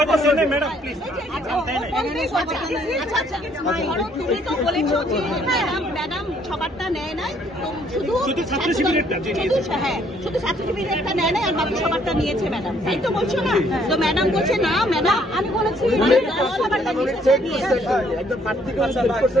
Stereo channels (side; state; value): both; normal; correlation 0.65